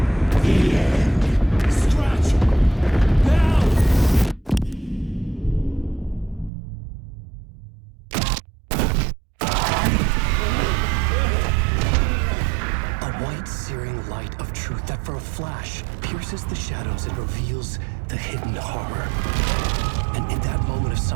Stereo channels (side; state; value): left; drops out; at 6.5 s